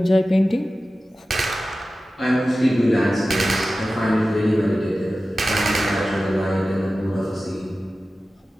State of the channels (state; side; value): normal; both; correlation 0.95